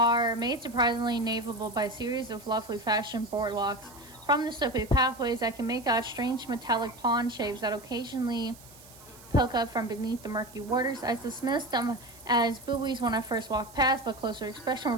made surprisingly navigable by a series of lovely fashioned boardwalks. From the slippery pathways, I can make out strange metallic pond shapes that occasionally poke up from beneath the murky waters. I dismissed them as buoys when I first walked past, but closer inspection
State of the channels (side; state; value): right; noise; hiss, 21 dB below the sound